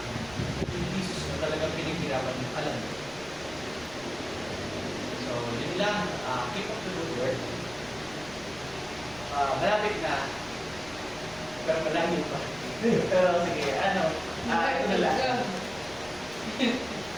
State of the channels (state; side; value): noise; left; rumble, 20 dB below the sound